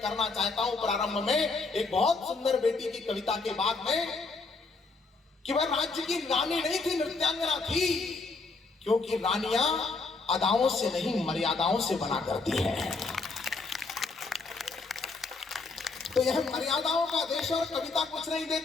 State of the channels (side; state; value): right; quieter; 3.9 dB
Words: करना चाहता हूं। प्रारंभ में एक बहुत सुंदर बेटी की कविता के बाद में कि वह राज्य की रानी नहीं थी, नृत्यांगना थी, क्योंकि रानियां अदाओं से नहीं मर्यादाओं से बना करती है। तो यह मर्यादाओं का देश और कविता कुछ नहीं